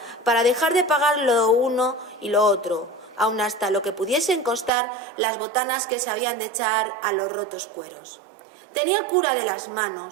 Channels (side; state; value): left; drops out; at 4.7 s